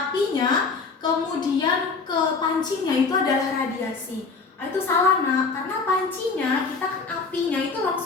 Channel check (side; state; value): right; quieter; 4.5 dB